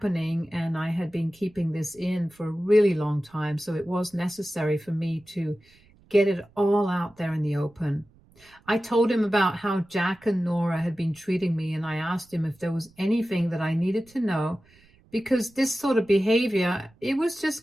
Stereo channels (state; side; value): noise; right; rumble, 30 dB below the sound